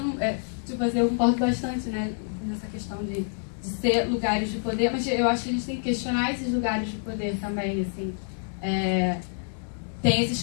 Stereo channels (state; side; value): silent; right; 60 dB below the other